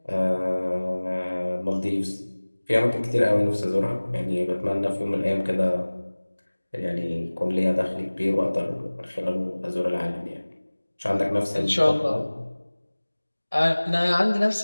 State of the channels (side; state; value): both; inverted; correlation -1.00